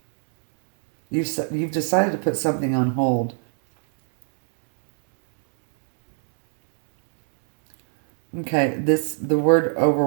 You've decided to put something on hold. Okay, the word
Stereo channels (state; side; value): silent; left; digital silence